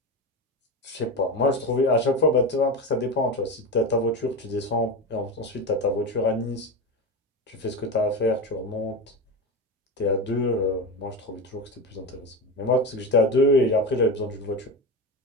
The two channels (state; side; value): normal; both; correlation 0.21